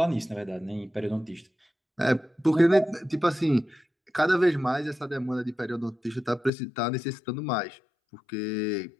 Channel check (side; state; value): right; drops out; at 6.5 s